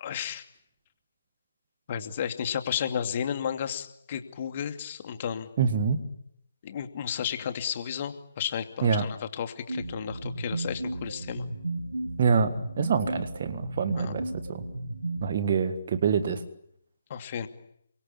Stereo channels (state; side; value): inverted; both; correlation -0.65